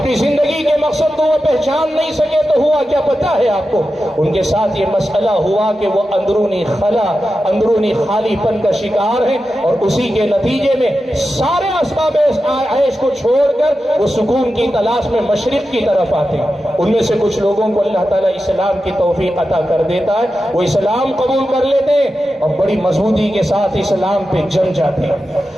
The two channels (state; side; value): normal; both; correlation 0.91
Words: जिंदगी के मकसद को वो पहचान नहीं सके तो हुआ क्या पता है आपको? उनके साथ ये मसला हुआ कि वो अंदरूनी खला, अंदरूनी खालीपन का शिकार है और उसी के नतीजे में सारे असबाब ऐश को छोड़कर वो सुकून की तलाश में मशरिक की तरफ आते हैं। उनमें से कुछ लोगों को अल्लाह ताला इस्लाम की तौफीक अता कर देता है, वो इस्लाम कबूल कर लेते हैं और बड़ी मजबूती के साथ इस्लाम पे जम जाते